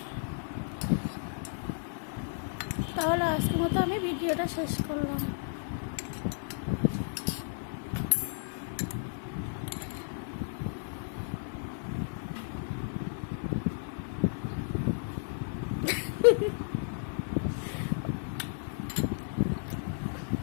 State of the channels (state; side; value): silent; right; 56 dB below the other